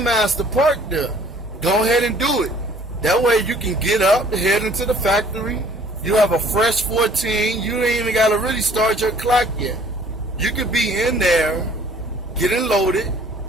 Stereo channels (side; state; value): both; normal; correlation 0.56